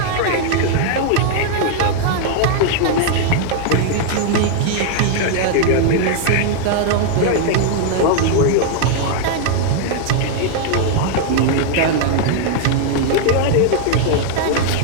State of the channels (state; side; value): different; both; correlation 0.00